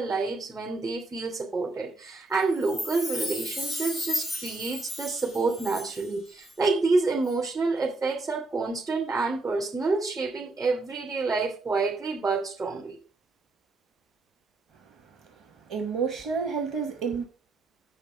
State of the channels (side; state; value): left; quieter; 3.2 dB